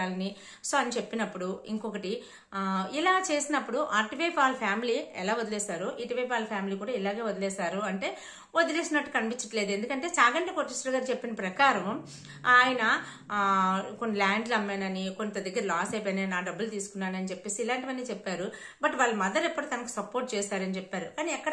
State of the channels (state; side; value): identical; both; correlation 1.00